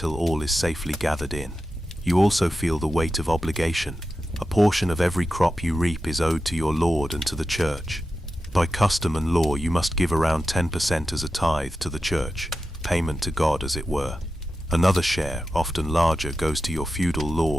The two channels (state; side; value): normal; both; correlation 0.91